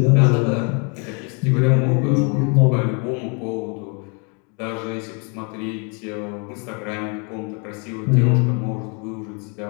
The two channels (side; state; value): right; quieter; 35.1 dB